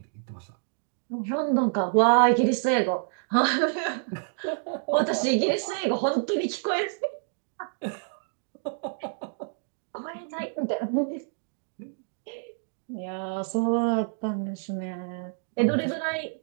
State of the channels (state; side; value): silent; left; digital silence